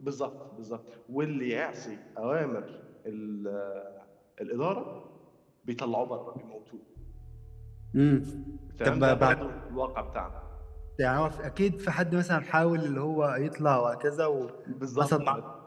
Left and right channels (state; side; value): identical; both; correlation 1.00